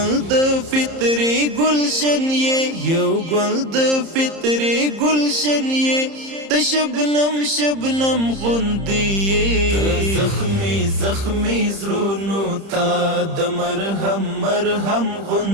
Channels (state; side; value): late; left; 30 ms